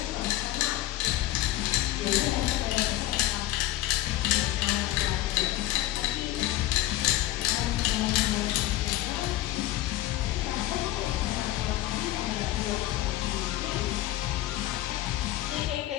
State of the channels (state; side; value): quieter; right; 15.3 dB